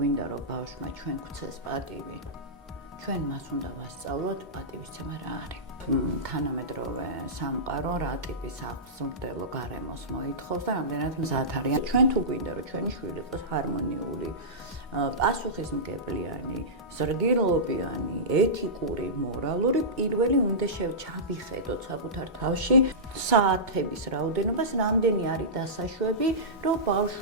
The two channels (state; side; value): normal; both; correlation -0.17